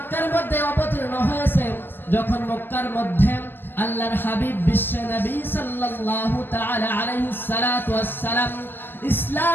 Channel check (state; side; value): late; right; 0.097 ms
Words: মধ্যে অবতীর্ণ হয়েছে যখন মক্কার মধ্যে আল্লাহর হাবিব বিশ্বনবী সাল্লাল্লাহু তাআলা আলাইহিস সালাতু ওয়াস সালাম